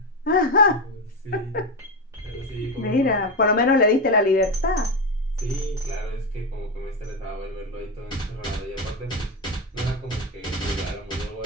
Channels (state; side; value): normal; both; correlation 0.14